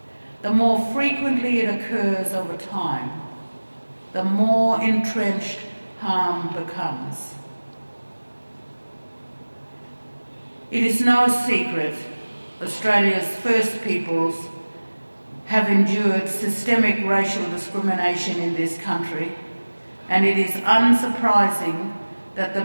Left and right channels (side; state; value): both; inverted; correlation -1.00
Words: The more frequently it occurs over time, the more entrenched harm becomes. It is no secret Australia's First Peoples have endured systemic racial discrimination in this country, and it is unsurprising that